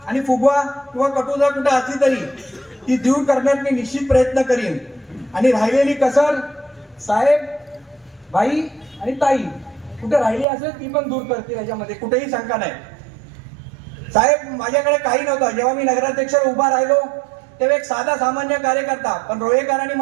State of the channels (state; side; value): drops out; left; at 10.5 s